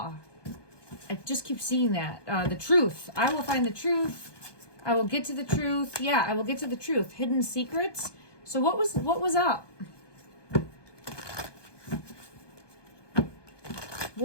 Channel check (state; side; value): late; right; 1.2 ms